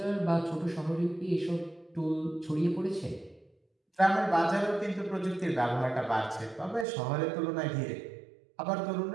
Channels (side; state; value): left; drops out; at 6.9 s